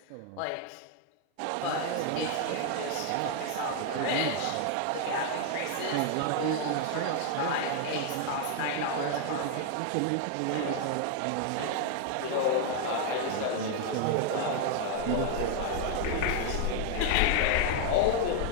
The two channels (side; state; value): both; different; correlation 0.00